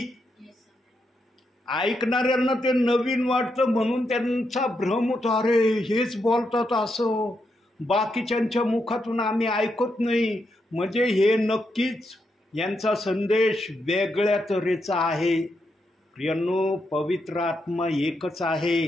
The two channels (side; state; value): both; normal; correlation 0.82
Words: ऐकणाऱ्यांना ते नवीन वाटतं म्हणून त्यांचा भ्रम होतो, अरे हेच बोलतात असं, बाकीच्यांच्या मुखातून आम्ही ऐकत नाही. म्हणजे हे नक्कीच यांचा संदेश वेगळ्या तऱ्हेचा आहे. प्रियांनो, पवित्र आत्मा एकच